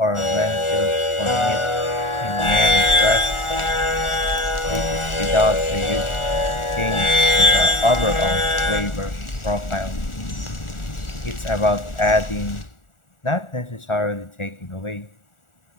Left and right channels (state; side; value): late; right; 1.4 ms